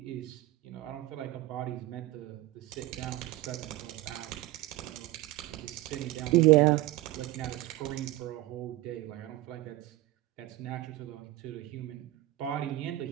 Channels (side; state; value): left; quieter; 17.1 dB